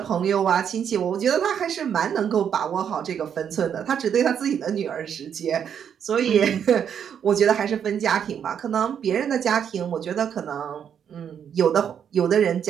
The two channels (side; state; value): left; quieter; 8.3 dB